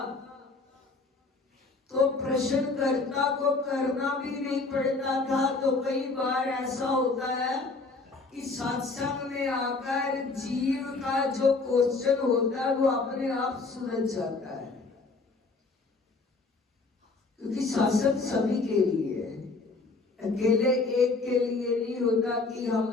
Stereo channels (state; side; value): quieter; right; 3.8 dB